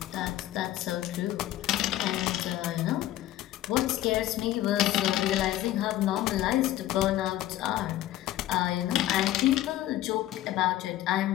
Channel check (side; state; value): right; quieter; 14.1 dB